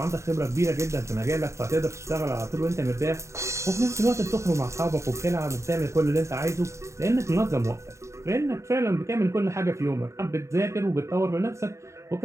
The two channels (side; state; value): left; late; 0.14 ms